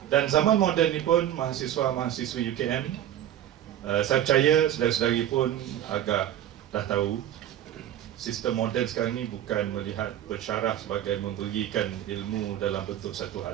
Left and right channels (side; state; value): left; quieter; 11.5 dB